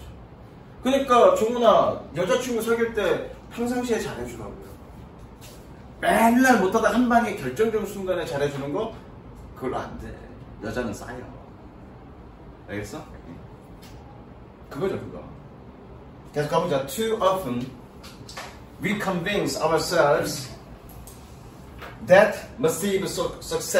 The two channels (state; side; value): identical; both; correlation 1.00